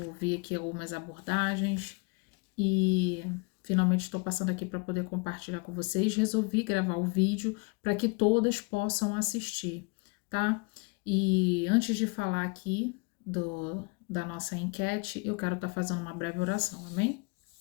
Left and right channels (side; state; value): right; quieter; 30.7 dB